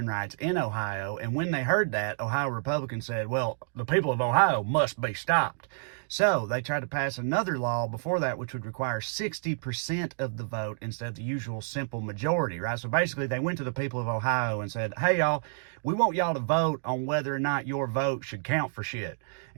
rights in Ohio. And when they heard that, Ohio Republicans said, well, the people of Ohio must be stopped. So they tried to pass another law before that, which would require 60% of the vote instead of the usual simple majority, right? So basically, they went to the people of Ohio and said, hey, y'all, we want y'all to vote on whether or not your vote should count for shit.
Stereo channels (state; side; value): silent; left; digital silence